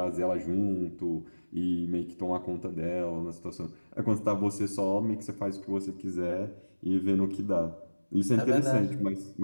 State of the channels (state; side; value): inverted; both; correlation -1.00